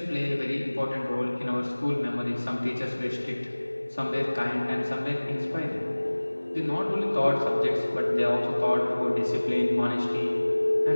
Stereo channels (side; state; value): both; inverted; correlation -1.00